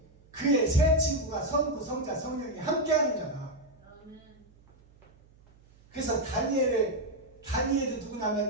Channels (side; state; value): right; noise; hum, 28 dB below the sound